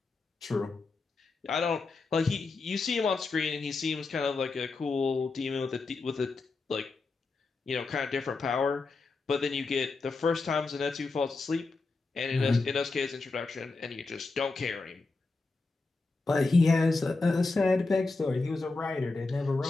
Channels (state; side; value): quieter; right; 3.8 dB